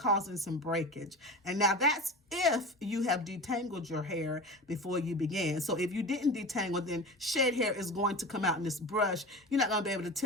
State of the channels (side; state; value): both; normal; correlation 0.31